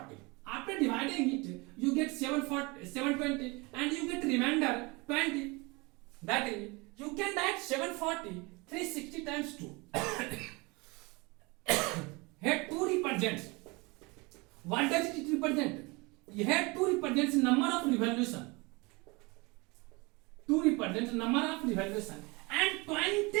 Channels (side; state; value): left; quieter; 26.1 dB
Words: After dividing it, you get 720 and you get remainder 20. That is, you can write 740 360 times 2. Here 2 represents. What does it represent? Here 2 represents number of revolution. 2 represents number of revolution. And